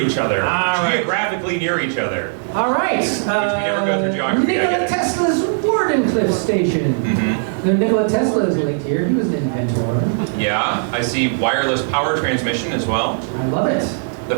other. All right. Geographically near each other. All right. never go through geography, I Nikola get it. Tesla's Wardenclyffe Station. Mm-hmm. The Nikola Tesla is linked here. He was an inventor. Yeah, I see wireless power transmission as well. I love it.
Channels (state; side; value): silent; left; 67 dB below the other